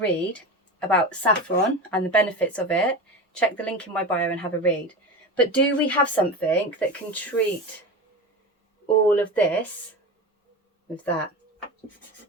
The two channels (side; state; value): both; normal; correlation 0.26